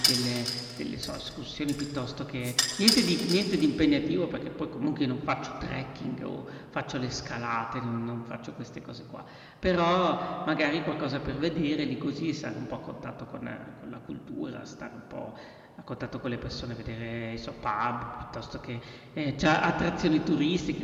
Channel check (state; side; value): identical; both; correlation 1.00